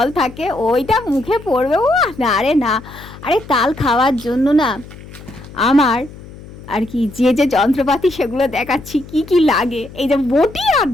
থাকে, ওইটা মুখে পড়বে, ও না রে না। আরে তাল খাওয়ার জন্য না আমার আর কি যে যে যন্ত্রপাতি সেগুলো দেখাচ্ছি কি কি লাগে। এই যে বটি আর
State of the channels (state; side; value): noise; left; hum, 17 dB below the sound